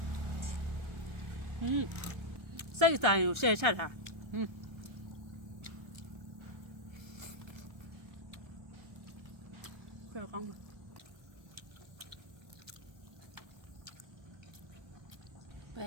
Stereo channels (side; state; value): left; late; 1.4 ms